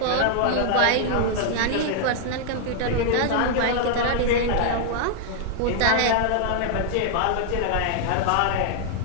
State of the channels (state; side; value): different; both; correlation -0.01